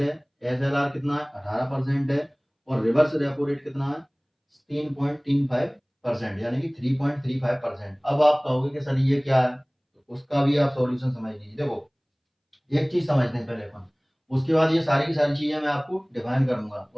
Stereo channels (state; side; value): identical; both; correlation 1.00